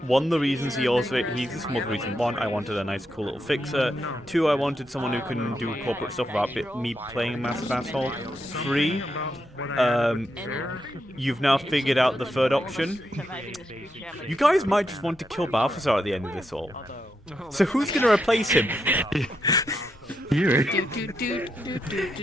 one of the reasons he's this multiple reason. One, I wanted a nice cool little fixer. Two, I wanted someone who can do corporate stuff without me playing a massive asshole. Three, you've now figured out the third option. You guys might just want to kill Balthazar at the end of this all. So who's gonna replace him? You're gonna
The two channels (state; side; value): normal; both; correlation 0.83